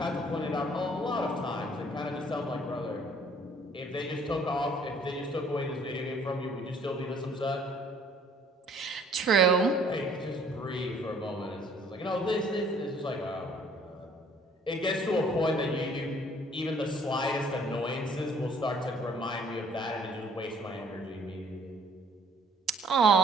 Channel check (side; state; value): both; normal; correlation 0.58